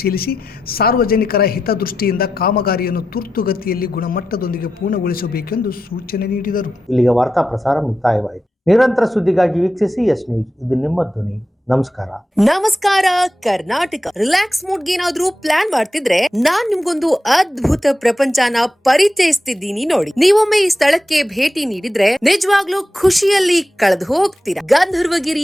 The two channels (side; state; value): both; normal; correlation 0.89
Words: ಸಾರ್ವಜನಿಕರ ಹಿತದೃಷ್ಟಿಯಿಂದ ಕಾಮಗಾರಿಯನ್ನು ತುರ್ತುಗತಿಯಲ್ಲಿ ಗುಣಮಟ್ಟದೊಂದಿಗೆ ಪೂರ್ಣಗೊಳಿಸಬೇಕೆಂದು ಸೂಚನೆ ನೀಡಿದರು. ಇಲ್ಲಿಗೆ ವಾರ್ತಾ ಪ್ರಸಾರ ಮುಕ್ತಾಯವಾಯಿತು. ನಿರಂತರ ಸುದ್ದಿಗಾಗಿ ವೀಕ್ಷಿಸಿ ಎಸ್ ನ್ಯೂಸ್. ಇದು ನಿಮ್ಮ ಧ್ವನಿ. ನಮಸ್ಕಾರ ಕರ್ನಾಟಕ. ರಿಲ್ಯಾಕ್ಸ್ ಮೂಡ್ಗೆ ಏನಾದ್ರೂ ಪ್ಲಾನ್ ಮಾಡ್ತಿದ್ರೆ ನಾನ್ ನಿಮ್ಗೊಂದು ಅದ್ಭುತ ಪ್ರಪಂಚನ ಪರಿಚಯಿಸ್ತಿದ್ದೀನಿ ನೋಡಿ. ನೀವೊಮ್ಮೆ ಈ ಸ್ಥಳಕ್ಕೆ ಭೇಟಿ ನೀಡಿದ್ರೆ ನಿಜವಾಗ್ಲೂ ಖುಷಿಯಲ್ಲಿ ಕಳೆದು ಹೋಗ್ತೀರಾ.